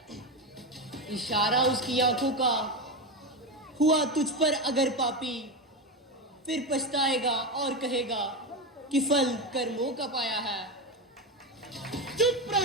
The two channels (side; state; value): both; normal; correlation 0.15